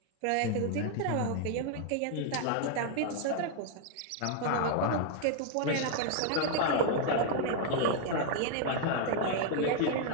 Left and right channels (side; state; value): both; different; correlation 0.00